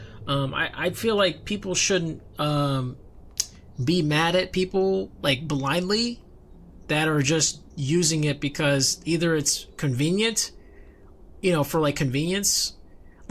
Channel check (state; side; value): identical; both; correlation 1.00